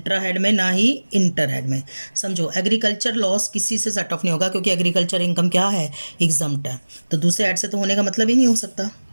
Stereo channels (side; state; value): both; inverted; correlation -1.00